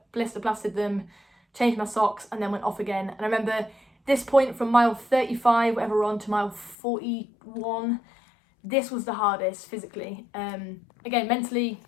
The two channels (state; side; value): drops out; right; at 6.8 s